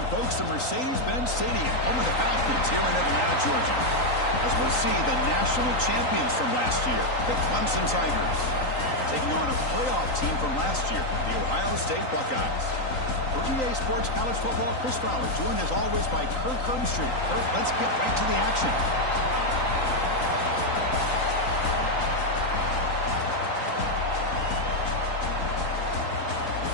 folks, to Mercedes-Benz Stadium, home of the Falcons here in Atlanta, Georgia. As we'll see the national champions from last year, the Clemson Tigers, taking on a playoff team from last year, the Ohio State Buckeyes. For EA Sports College Football, Chris Fowler, joined as always by Kirk Herbstreit. Kirk, let's get right to the action.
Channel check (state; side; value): late; right; 3.9 ms